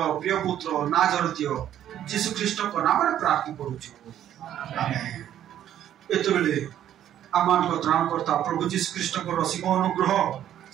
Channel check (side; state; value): left; quieter; 11.1 dB